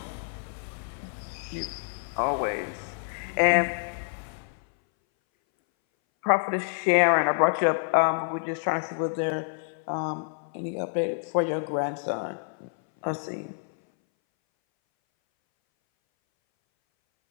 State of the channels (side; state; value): right; silent; 59 dB below the other